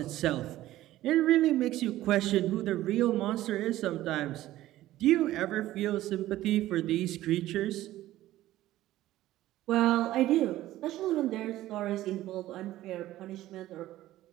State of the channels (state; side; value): quieter; left; 15.0 dB